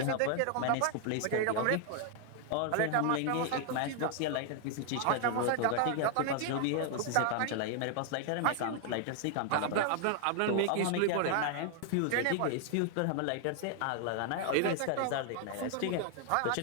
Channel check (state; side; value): different; both; correlation 0.00